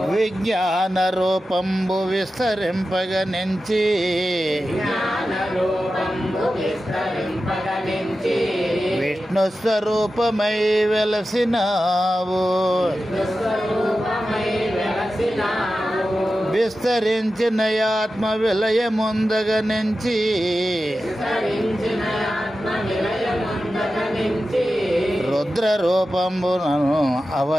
విజ్ఞాన రూపంబు విస్తరింపగనించి విష్ణు స్వరూపమై వెలసినావు. విస్తరించిన ఆత్మ విలయముందగనించి రుద్ర రూపంబునను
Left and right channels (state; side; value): normal; both; correlation 0.93